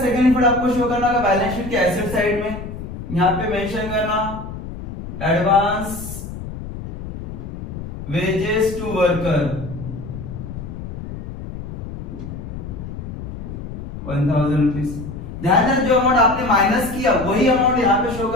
इफेक्ट आपको शो करना होगा बैलेंस शीट के एसेट साइड में। यहां पे मेंशन करना advance wages to worker 1000 rupees. ध्यान देना जो अमाउंट आपने माइनस किया वही अमाउंट यहाँ पे शो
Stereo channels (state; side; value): noise; left; rumble, 9 dB below the sound